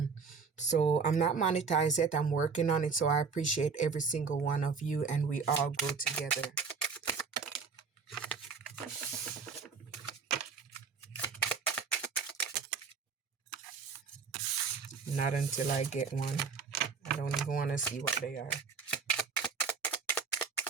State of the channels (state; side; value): quieter; left; 5.4 dB